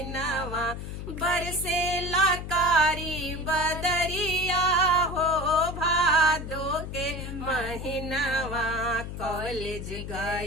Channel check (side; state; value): left; noise; hum, 7 dB below the sound